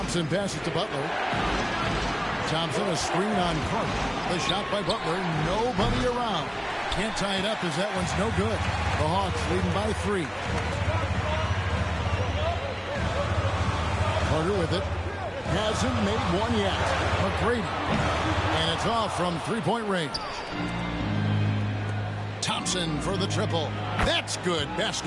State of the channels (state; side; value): identical; both; correlation 1.00